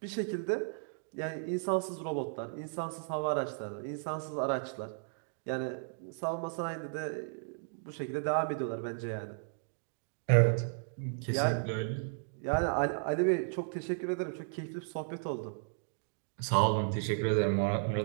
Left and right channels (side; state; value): left; silent; digital silence